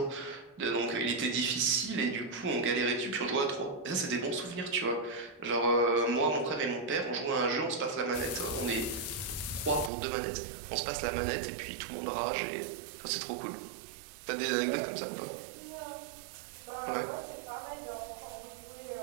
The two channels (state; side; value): drops out; left; at 9.9 s